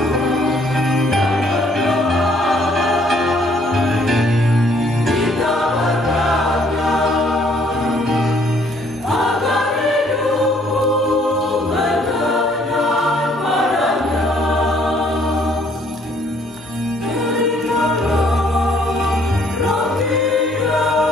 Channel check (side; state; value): both; normal; correlation 0.63